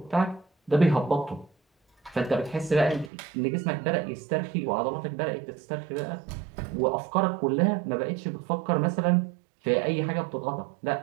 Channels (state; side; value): drops out; left; at 3.1 s